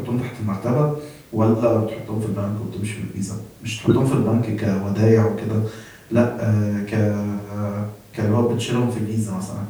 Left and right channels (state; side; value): identical; both; correlation 1.00